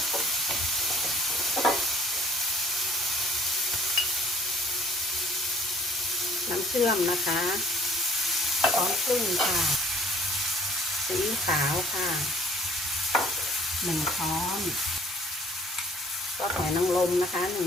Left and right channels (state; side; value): normal; both; correlation 0.54